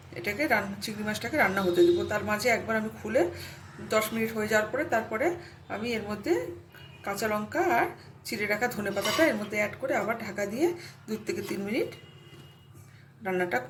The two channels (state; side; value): identical; both; correlation 1.00